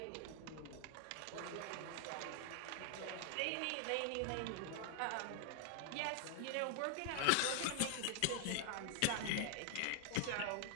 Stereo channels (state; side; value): different; both; correlation 0.00